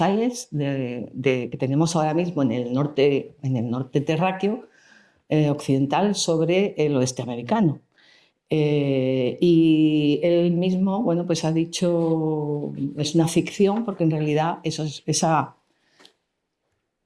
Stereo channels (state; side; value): identical; both; correlation 1.00